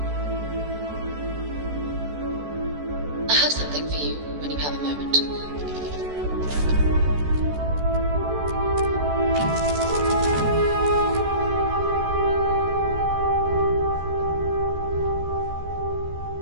I have something for you when you have a moment.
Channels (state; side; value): late; left; 14 ms